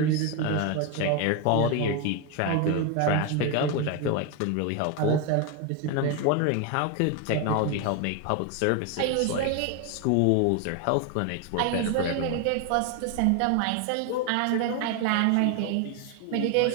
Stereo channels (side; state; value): both; different; correlation 0.01